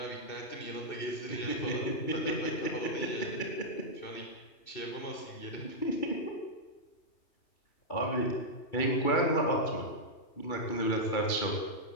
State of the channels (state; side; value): late; right; 2.3 ms